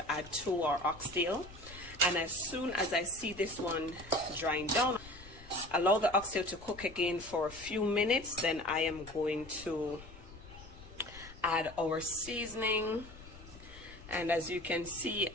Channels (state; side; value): noise; left; rumble, 18 dB below the sound